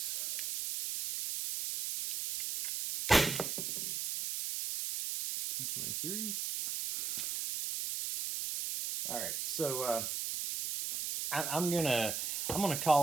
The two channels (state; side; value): noise; right; hiss, 2 dB below the sound